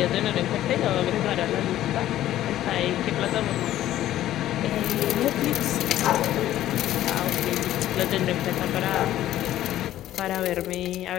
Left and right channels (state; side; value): quieter; right; 13.3 dB